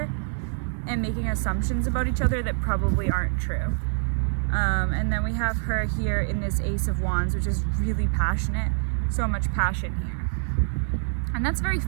and making assumptions about each other that probably aren't true. And then we have her here in this Ace of Wands, which is really passionate, so much passion here. And that's very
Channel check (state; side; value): silent; left; digital silence